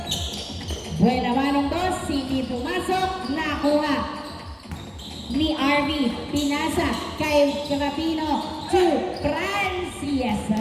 Buena manong boss, hindi pumasok, nakuha ni RV, pinasa kay Rapino to Franz. Yes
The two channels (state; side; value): identical; both; correlation 1.00